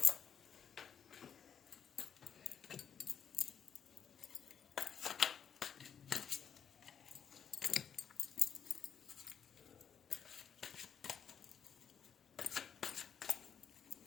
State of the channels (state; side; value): quieter; right; 7.8 dB